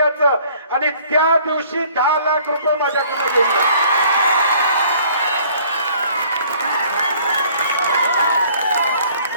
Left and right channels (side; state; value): both; inverted; correlation -0.56